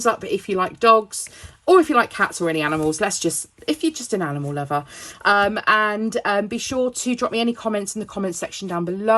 up if you like dogs, or if you like cats or any animals. If you're just an animal lover. And be sure to drop me any comments in the comments section down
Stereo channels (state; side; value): identical; both; correlation 1.00